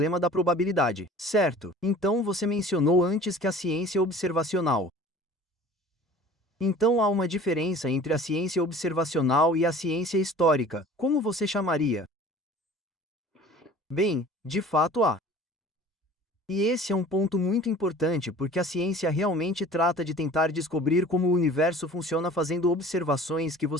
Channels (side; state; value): both; normal; correlation 0.45